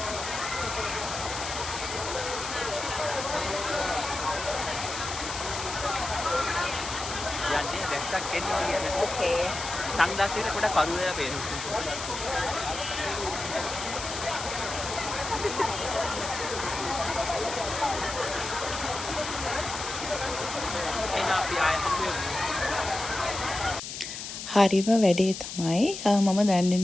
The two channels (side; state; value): left; noise; hiss, 7 dB below the sound